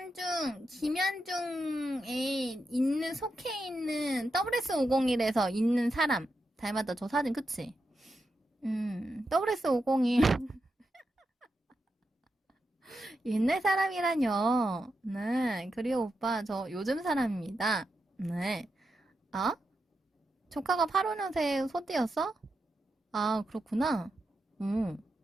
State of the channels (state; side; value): normal; both; correlation 0.86